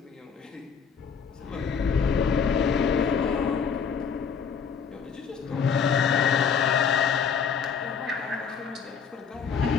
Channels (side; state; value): right; quieter; 6.5 dB